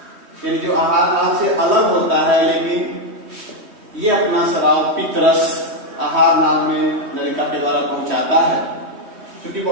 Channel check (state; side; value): late; left; 3.2 ms